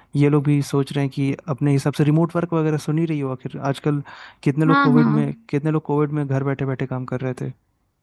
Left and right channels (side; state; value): both; identical; correlation 1.00